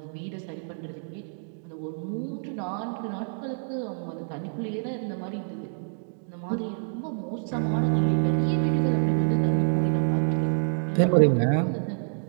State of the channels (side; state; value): left; silent; digital silence